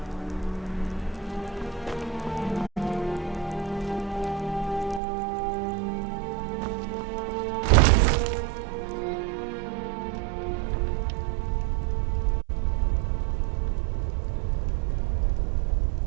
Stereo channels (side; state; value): left; drops out; at 5.0 s